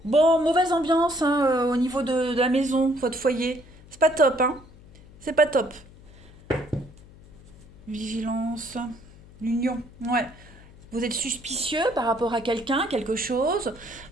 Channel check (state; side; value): noise; left; hum, 22 dB below the sound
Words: Bon, mauvaise ambiance hein, au niveau de la maison, votre foyer. C'est pas top, hein. C'est pas top. Vigilance. L'union. Ouais. Vous êtes suspicieux par rapport à quelqu'un, quelque chose.